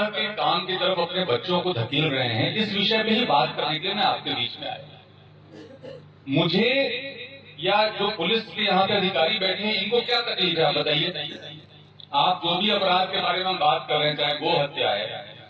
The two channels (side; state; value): both; identical; correlation 1.00